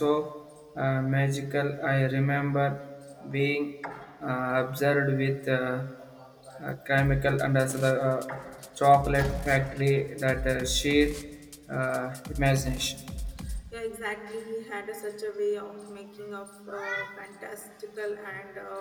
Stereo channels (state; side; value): identical; both; correlation 1.00